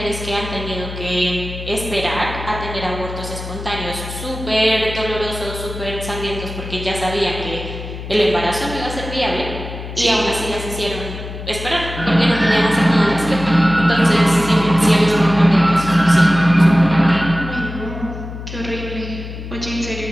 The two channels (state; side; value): noise; left; hum, 10 dB below the sound